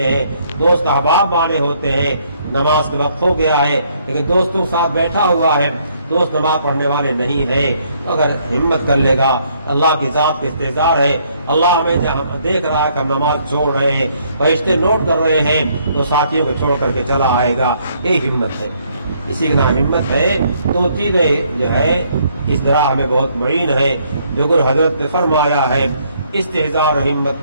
ہیں، دوست احباب مانے ہوتے ہیں، نماز کے وقت ہو گیا ہے لیکن دوستوں کے ساتھ بیٹھا ہوا ہے، دوست نماز پڑھنے والے نہیں ہیں، اگر ہمت کر لے گا، اللہ کی ذات کا استحضار ہے، اللہ ہمیں دیکھ رہا ہے کہ ہم نماز چھوڑ رہے ہیں، فرشتے نوٹ کر رہے ہیں، تو ساتھیوں کو چھوڑ کر کے چلا آئے گا، یہ ہمت ہے، اسی کا نام ہمت ہے۔ تو چیزیں جو ہے اس طرح ہمیں بہت معین ہے، جو کہ حضرت نے فرمایا ہے استحضار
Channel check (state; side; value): inverted; both; correlation -0.68